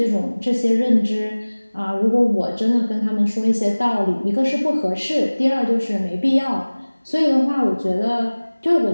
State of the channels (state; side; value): inverted; both; correlation -1.00